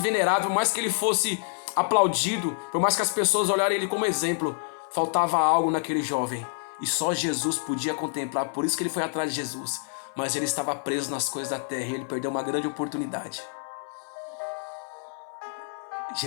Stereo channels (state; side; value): silent; right; 60 dB below the other